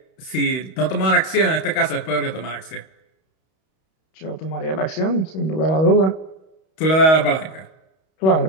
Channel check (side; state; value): right; late; 31 ms